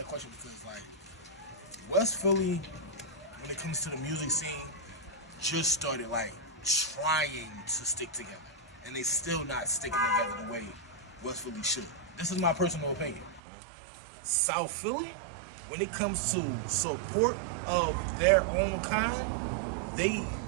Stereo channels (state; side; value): drops out; left; at 13.4 s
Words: question because like West Philly, when it comes to the music scene, just started like trying to stick together, and they still not sticking together the way West Philly should. This is my personal opinion. South Philly, when it comes to support of their own kind,